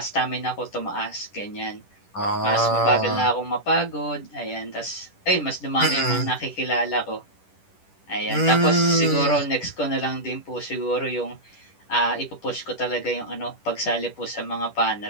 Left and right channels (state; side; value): late; right; 10 ms